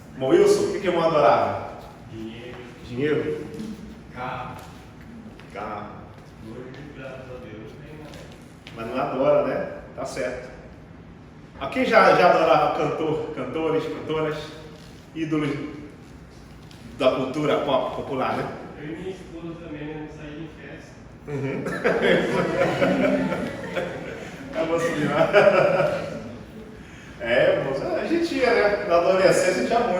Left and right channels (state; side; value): identical; both; correlation 1.00